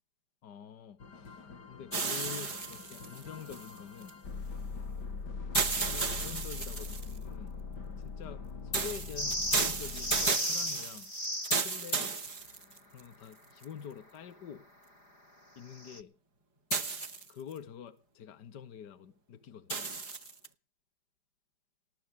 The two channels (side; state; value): right; late; 5.0 ms